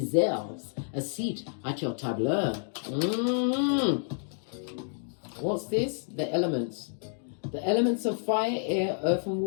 a seat at your tableau. What's this? The elements. The elements of fire, air, earth, and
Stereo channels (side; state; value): right; silent; digital silence